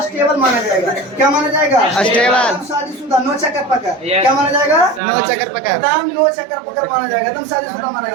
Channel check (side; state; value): left; drops out; at 5.0 s